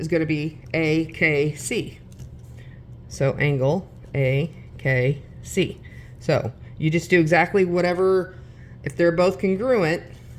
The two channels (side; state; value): both; identical; correlation 1.00